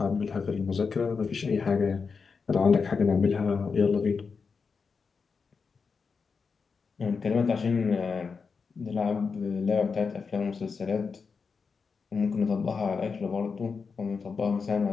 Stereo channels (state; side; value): quieter; right; 5.2 dB